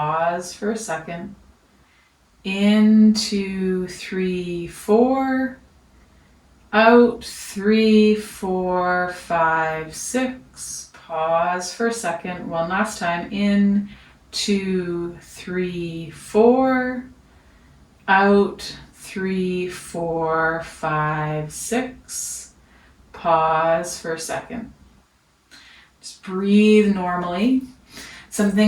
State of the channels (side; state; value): both; identical; correlation 1.00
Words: for a second. In 2, 3, 4. Out. 3, 4, 5, 6. Pause for a second. One last time. In 2, 3, 4. Out. 3, 4, 5, 6. Pause for a second. Just breathe normally. Some